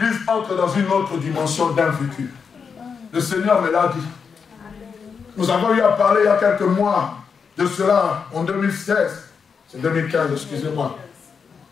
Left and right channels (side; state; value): right; quieter; 6.0 dB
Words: entre dans une autre dimension d'un vécu. Le Seigneur me l'a dit. Nous avons eu à parler il y a quelques mois de cela, en 2016. C'est 2015, excusez-moi.